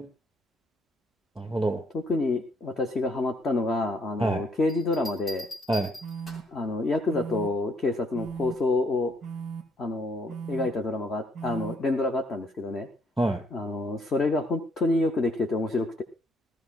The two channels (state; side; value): normal; both; correlation 0.69